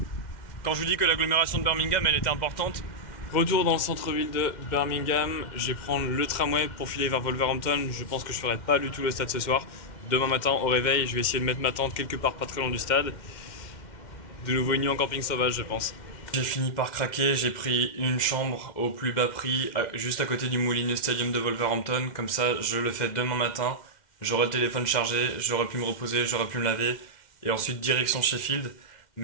Quand je vous dis que l'agglomération de Birmingham, elle était importante. Retour dans le centre-ville de Birmingham, je vais prendre le tramway pour filer vers Wolverhampton. Je pense que je ferai pas du tout le stade ce soir. Demain matin au réveil, je vais essayer de mettre ma tente quelque part pas très loin du stade. De nouveau une nuit en camping sauvage, je pense. J'ai fini par craquer, j'ai pris une chambre au plus bas prix, juste à côté du Molineux Stadium de Wolverhampton. Comme ça, je le fais demain matin. J'aurai le téléphone chargé, j'aurai pu me reposer, j'aurai pu me laver. Et ensuite, direction Sheffield.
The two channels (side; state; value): right; late; 2.1 ms